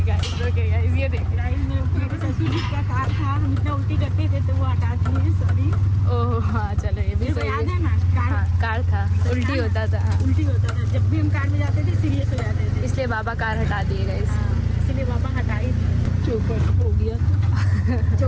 गाइस। ओके गाइस ये देखिए। गाइस मेरे ससुर जी का कार था, हम इतना उल्टी करते थे तो वो हटा दिए, सॉरी। ओह हाँ चलो ये भी सही याद है है। ना, कार हाँ कार था, उल्टी होता था। हाँ। उल्टी होता था। जब भी हम कार में जाते थे सीरियस हो जाते थे, इसलिए बाबा कार हटा दिए गाइस। इसलिए बाबा हटाई थी। चौपट हो गया।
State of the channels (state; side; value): identical; both; correlation 1.00